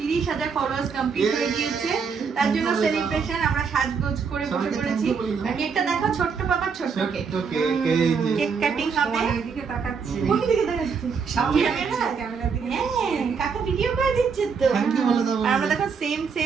ফলোয়ার্স কমপ্লিট হয়ে গিয়েছে। তার জন্য সেলিব্রেশন আমরা সাজগোজ করে বসে পড়েছি। কেকটা দেখো, ছোট্ট পাপার ছোট্ট কেক, কেক কাটিং হবে। এদিকে তাকাচ্ছি। কোন দিকে দেখাচ্ছি? ক্যামেরার দিকে। হ্যাঁ, কাকা ভিডিও করে দিচ্ছে তো। আর আমরা দেখো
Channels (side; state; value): left; quieter; 5.8 dB